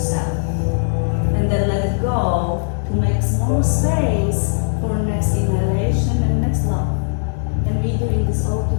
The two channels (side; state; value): right; silent; digital silence